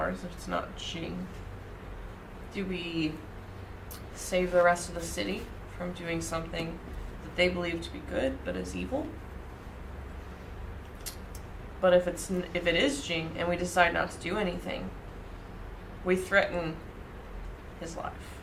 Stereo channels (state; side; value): identical; both; correlation 1.00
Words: if it's not Jing, do we save the rest of the city from doing something that they believe to be good but is evil? But if it is Jing and we decide not to do anything, we threaten his life.